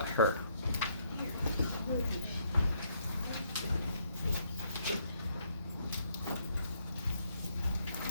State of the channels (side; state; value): both; inverted; correlation -0.71